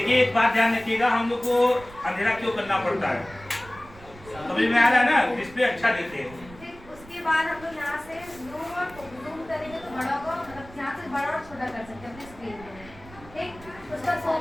एक बात ध्यान रखिएगा, हम लोग को अंधेरा क्यों करना पड़ता है, समझ में आ रहा है ना, डिस्प्ले अच्छा देते हैं। उसके बाद हम लोग यहाँ से जूम करेंगे तो बड़ा होगा, मतलब यहाँ से बड़ा और छोटा कर सकते हैं अपनी स्क्रीन में, ठीक। उसका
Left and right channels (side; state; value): right; noise; rumble, 20 dB below the sound